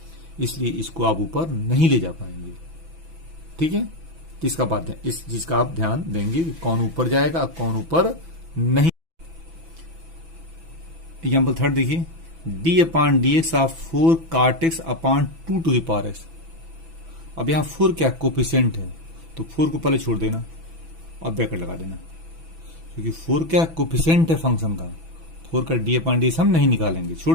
इसलिए इसको आप ऊपर नहीं ले जा पाएंगे। ठीक है, तो इसका बात है, इस चीज का आप ध्यान देंगे कि कौन ऊपर जाएगा, कौन ऊपर नहीं। एग्जाम्पल थर्ड देखिए, D upon D X of 4 cot x upon 2 to the power X. अब यहां 4 क्या कोफिशिएंट है, तो 4 को पहले छोड़ देना और ब्रैकेट लगा देना, क्योंकि 4 क्या कोफिशिएंट है फंक्शन का। 4 का डी अपॉन डी एक्स हम नहीं निकालेंगे,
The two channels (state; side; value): late; left; 6.1 ms